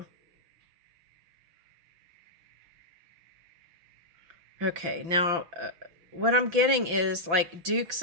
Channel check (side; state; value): left; late; 5.9 ms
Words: Okay, now what I'm getting is like Dukes